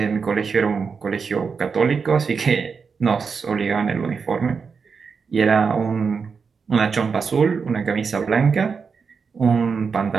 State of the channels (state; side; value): quieter; left; 5.5 dB